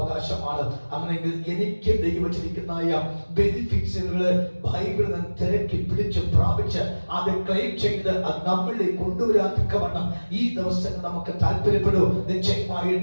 അങ്ങനെയെങ്കിൽ എനിക്ക് ദൈവം വെച്ചിരിക്കുന്ന ബെനിഫിറ്റ്സുകള് ബൈബിളിൽ നിന്ന് തിരക്കി പിടിച്ച് പ്രാപിച്ച് അത് ക്ലെയിം ചെയ്ത് അത് നമ്മളിലേക്ക് കൊണ്ടുവരാൻ തക്കവണ്ണം ഈ ദിവസങ്ങൾ നമുക്ക് താല്പര്യപ്പെടൂ.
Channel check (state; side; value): inverted; both; correlation -1.00